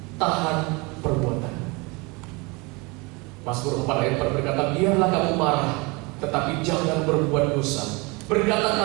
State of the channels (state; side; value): quieter; left; 27.1 dB